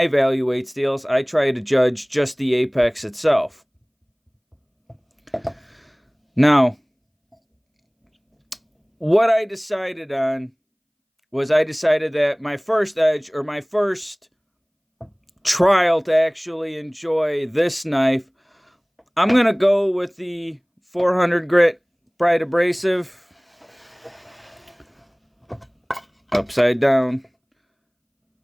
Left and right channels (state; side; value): identical; both; correlation 1.00